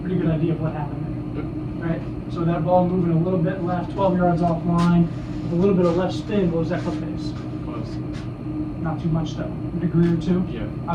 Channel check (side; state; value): both; identical; correlation 1.00